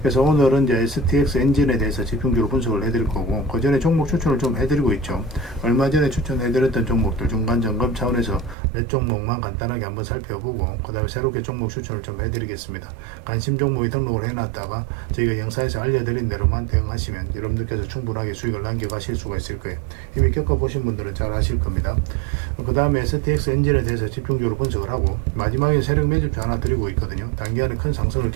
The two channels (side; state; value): left; drops out; at 8.6 s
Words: 그래서 오늘은 이제 STX 엔진에 대해서 집중적으로 분석을 해드릴 거고, 그 전에 종목 추천을 좀 해드리고 있죠. 얼마 전에 추천해드렸던 종목들 중간 점검 차원에서 몇 종목만 간단하게 한번 살펴보고, 그 다음에 새롭게 종목 추천을 좀 해드리겠습니다. 관심 종목이 등록을 해놨다가 저희가 영상에서 알려드린 대로만 대응하시면 여러분들께서 충분하게 수익을 남겨가실 수가 있을 거예요. 이미 겪어보신 분들은 잘 아실 겁니다. 그 다음에 STX 엔진에 대해서 집중적으로 분석을 하고, 마지막에 세력 매집표 하나 드리고 있거든요. 단기간에 큰 상승을